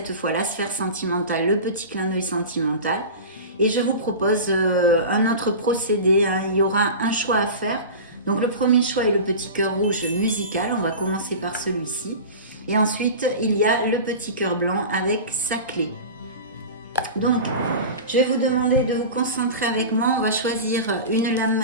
fois la sphère sentimentale, le petit clin d'œil sentimental. Et je vous propose un autre procédé, hein. Il y aura un choix à faire. Donc le premier choix est le petit cœur rouge musical, on va commencer par celui-ci. Et ensuite, il y a le petit cœur blanc avec sa clé. Donc, je vais vous demander de vous concentrer avec moi. On va choisir une lame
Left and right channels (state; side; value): inverted; both; correlation -0.31